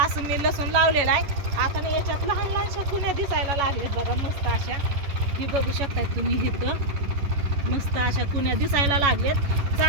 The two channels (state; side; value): late; left; 10 ms